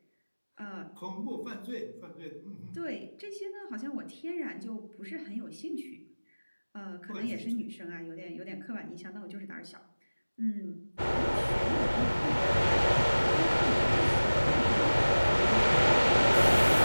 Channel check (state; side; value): inverted; both; correlation -1.00